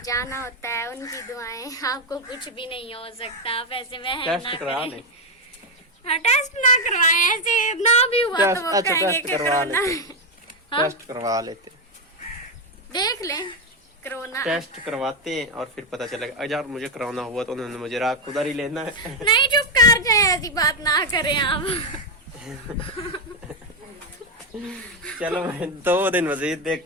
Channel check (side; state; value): both; normal; correlation 0.06